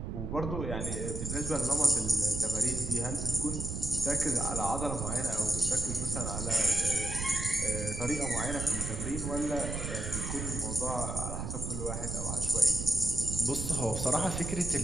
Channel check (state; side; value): noise; right; rumble, 4 dB below the sound